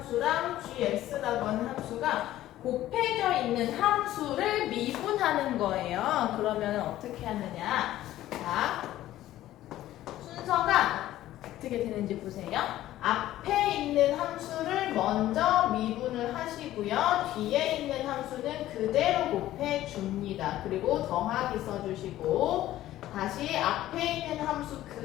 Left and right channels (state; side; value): quieter; right; 14.2 dB